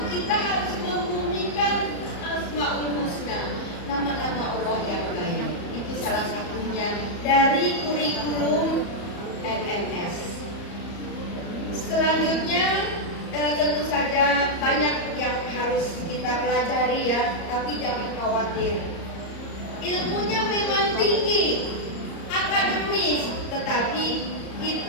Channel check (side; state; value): right; late; 34 ms